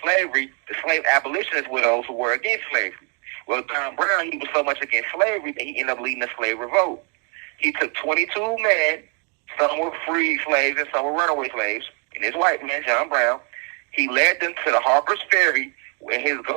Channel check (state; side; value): quieter; left; 35.9 dB